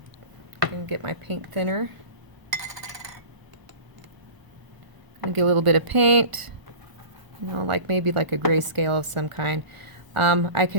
I'm going to get my paint thinner. I'm going to get a little bit of paint, like maybe like a grayscale of some kind. I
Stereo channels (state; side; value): late; left; 1.0 ms